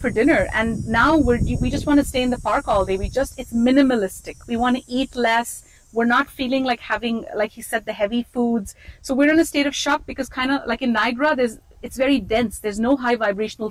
dinner, and now we just want to stay in the park all day. It's minimalistic. We want to eat less. We're not feeling like having, like he said, the heavy foods. So we're in a state of shock because kind of like in Niagara, it's very dense. There's no high vibrational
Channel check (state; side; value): identical; both; correlation 1.00